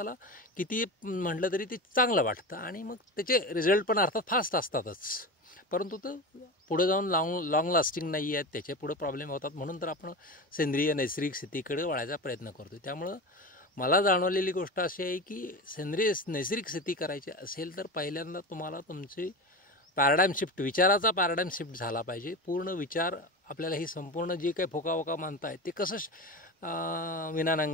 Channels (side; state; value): both; normal; correlation 0.25